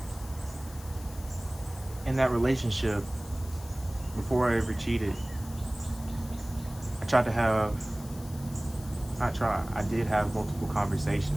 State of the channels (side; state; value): left; noise; hiss, 18 dB below the sound